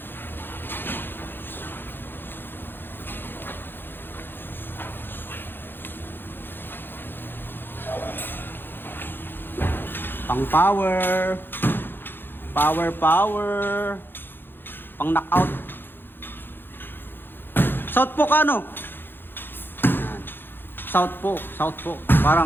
Pang power, power, pang knockout. Southpaw ka ano? Yan. Southpaw,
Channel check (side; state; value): right; late; 0.10 ms